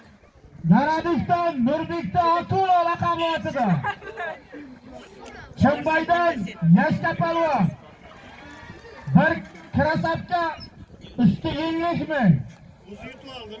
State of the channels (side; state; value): both; identical; correlation 1.00